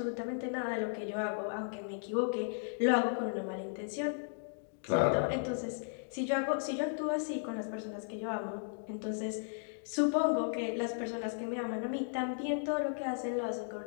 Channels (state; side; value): silent; right; digital silence